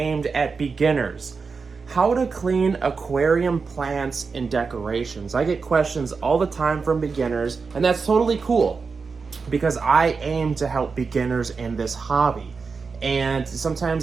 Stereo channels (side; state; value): left; quieter; 4.9 dB